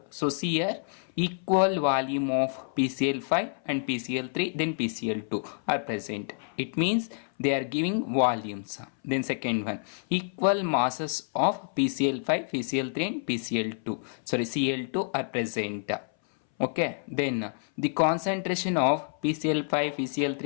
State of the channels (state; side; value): silent; right; 59 dB below the other